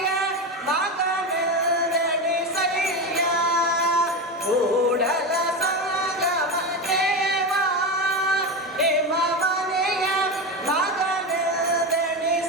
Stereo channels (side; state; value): both; normal; correlation 0.18